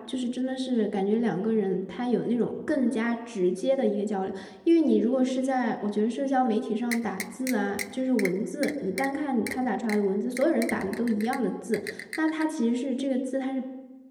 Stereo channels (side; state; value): both; identical; correlation 1.00